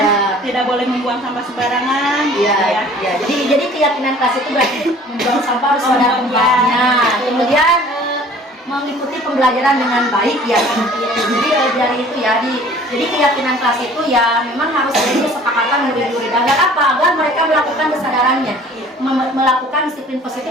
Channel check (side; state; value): both; normal; correlation 0.50